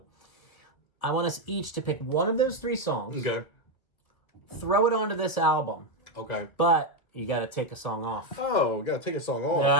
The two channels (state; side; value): late; right; 1.9 ms